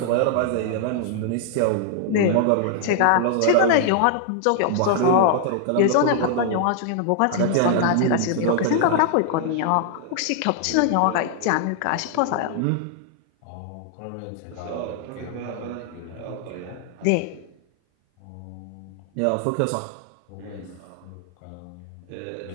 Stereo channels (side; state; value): both; different; correlation 0.00